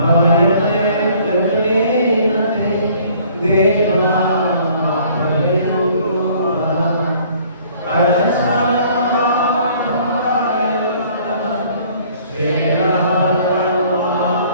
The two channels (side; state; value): both; inverted; correlation -0.56